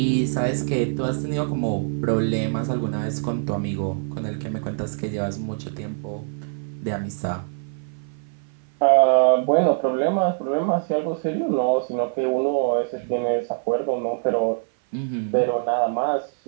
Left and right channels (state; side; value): silent; left; 57 dB below the other